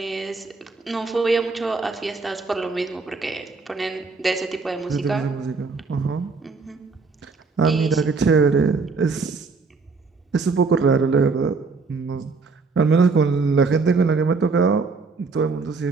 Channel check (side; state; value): left; quieter; 4.4 dB